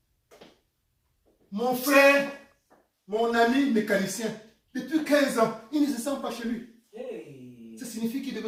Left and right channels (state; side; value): identical; both; correlation 1.00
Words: Mon frère, mon ami mécanicien, depuis 15 ans, il ne se sent pas chez lui. Hey. Ça signifie qu'il